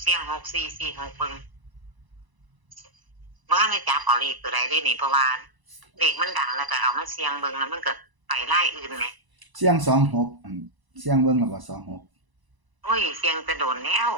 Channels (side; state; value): left; late; 1.0 ms